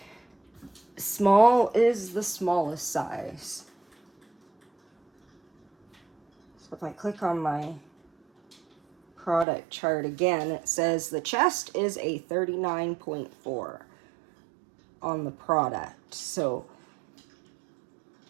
small is the smallest size. So if I click on my product chart again, it says the chest is a 39.4 on the product. So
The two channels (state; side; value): drops out; left; at 9.5 s